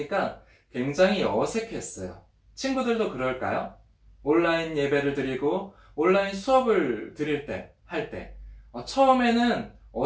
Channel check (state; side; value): identical; both; correlation 1.00